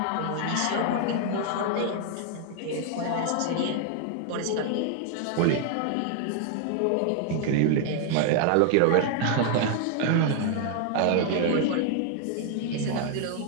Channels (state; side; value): different; both; correlation 0.00